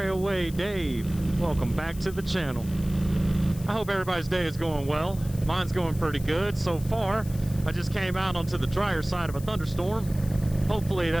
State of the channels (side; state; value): left; noise; hiss, 18 dB below the sound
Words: Away Dave. Welcome back to the channel. I hope everybody's day is going well. Mine's going pretty good so far. I just came out onto the drier side of a thunderstorm. Hopefully